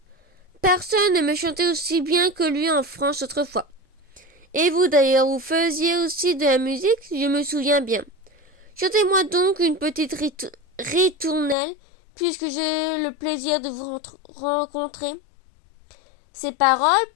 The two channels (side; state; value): right; drops out; at 11.6 s